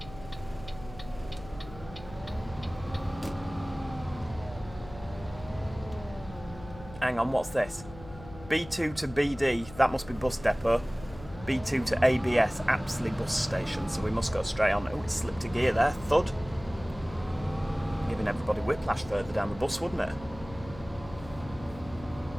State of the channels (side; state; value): left; noise; hum, 16 dB below the sound